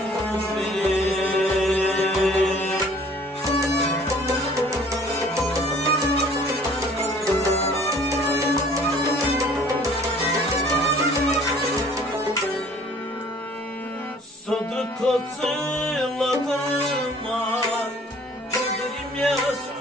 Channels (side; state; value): both; normal; correlation 0.54